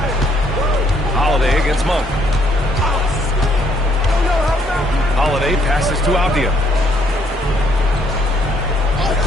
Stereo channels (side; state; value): both; normal; correlation 0.68